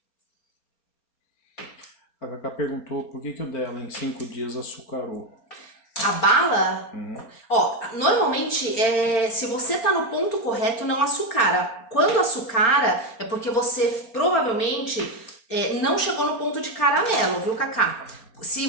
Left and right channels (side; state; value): right; late; 4.3 ms